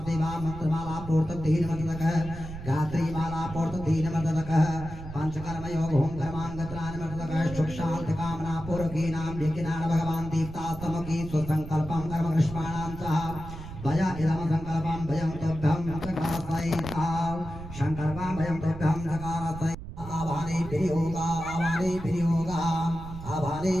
मंत्रमाला पूर्तधीनमतक गात्री माला पूर्तधीनमतक पंचकर्म योग ओम कर्मांगत्रानमतक सुख शांति कामना पूर्वकीनां यज्ञान भगवान दीप्तास्तमकी सुसंकल्पं कर्म कृष्णानां च भय इदम संकल्पं भयं तभ्यं सकासैता संकल्पं भयं तभ्यं सकासैता आवाने विनियोगा आवाने विनियोगा आवाने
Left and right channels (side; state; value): right; noise; rumble, 11 dB below the sound